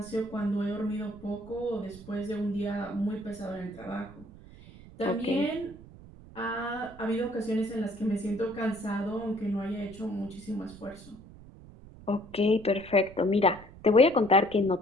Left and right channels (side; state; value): right; noise; rumble, 19 dB below the sound